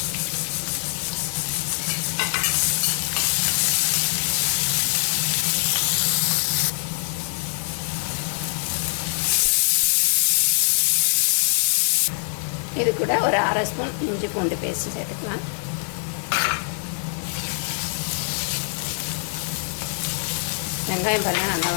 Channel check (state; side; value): silent; right; 61 dB below the other